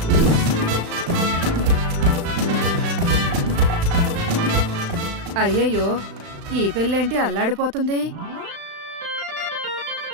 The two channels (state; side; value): late; left; 35 ms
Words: అయ్యయ్యో ఈ పెళ్ళేంటి అల్లాడిపోతుంది.